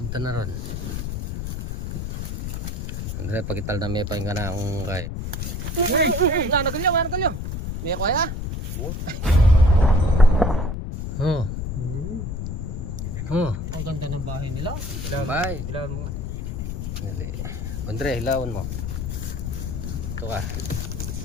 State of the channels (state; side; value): noise; left; rumble, 4 dB below the sound